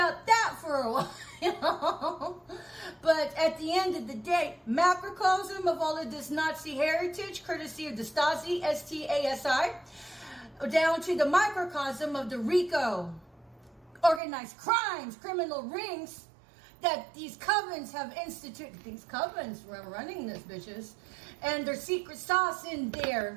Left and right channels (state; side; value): drops out; left; at 14.2 s